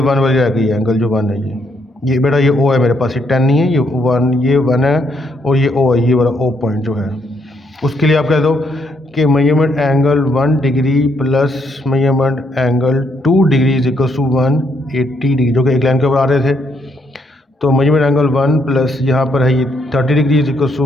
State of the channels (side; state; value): both; normal; correlation 0.73